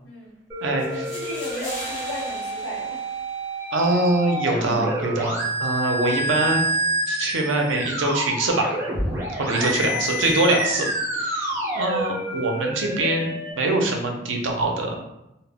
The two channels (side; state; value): both; normal; correlation 0.12